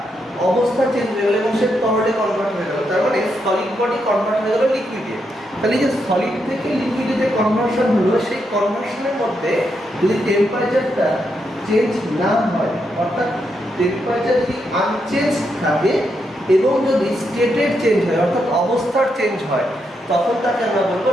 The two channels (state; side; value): normal; both; correlation 0.81